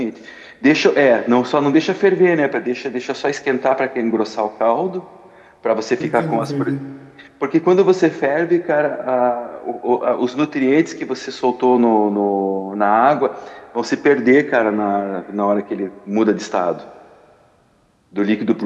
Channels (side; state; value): both; identical; correlation 1.00